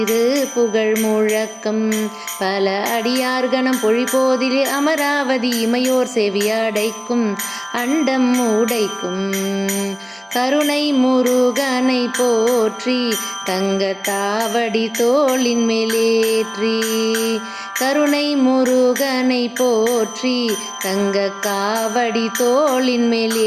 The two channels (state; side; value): identical; both; correlation 1.00